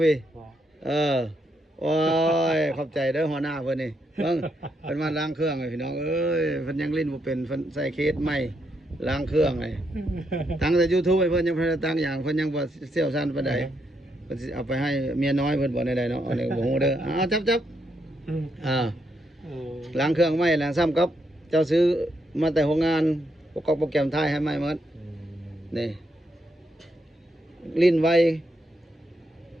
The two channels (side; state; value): both; normal; correlation 0.79